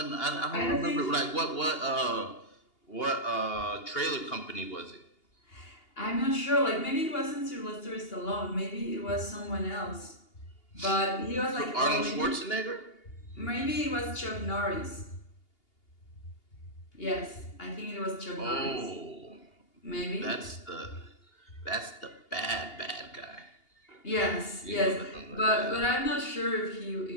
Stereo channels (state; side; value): late; right; 2.8 ms